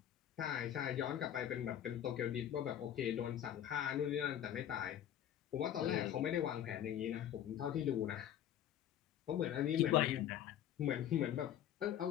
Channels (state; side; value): quieter; right; 10.7 dB